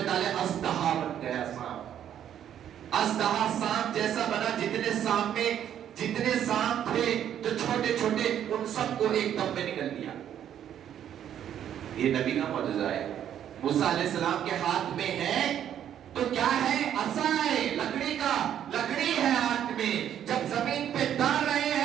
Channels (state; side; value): quieter; left; 10.1 dB